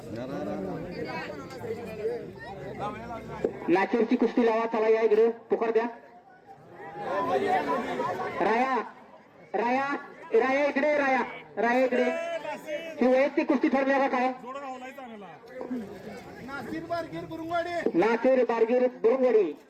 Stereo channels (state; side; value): identical; both; correlation 1.00